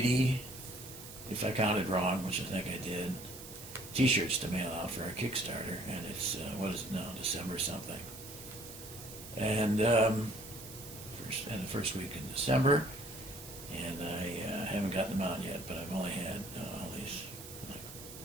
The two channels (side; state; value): right; noise; hiss, 13 dB below the sound